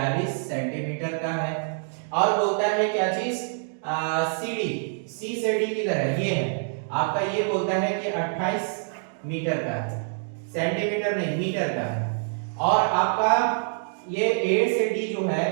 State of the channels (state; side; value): silent; left; digital silence